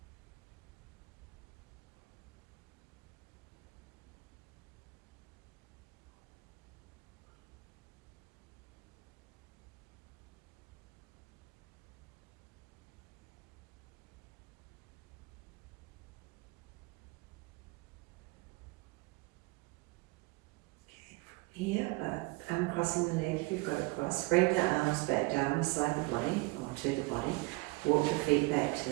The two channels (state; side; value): quieter; left; 24.5 dB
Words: Here, uncrossing the leg if you've got it crossed. Bring the arms back down beside the body, or to the body. Walk the feet back to